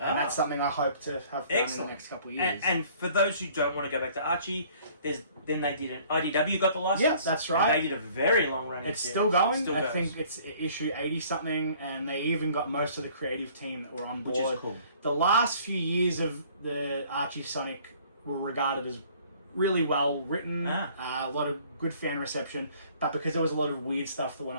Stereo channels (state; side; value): inverted; both; correlation -0.55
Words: that's something I hope to have done in the next couple of years. And for those who don't want to go back to Archie, then they did an IDW got the license. Yes, that's right. And they did a very long running It's series. still going. Still I goes. think it's issue 80 something, and they even got most of the creative team that were on board. Which is cool. The last few years of the Archie Sonic were regarded as really well written, a lot of good fan reception, but because there was a lot of weird stuff that went